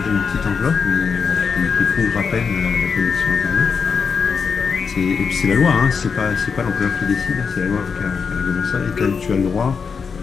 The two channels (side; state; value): right; quieter; 5.7 dB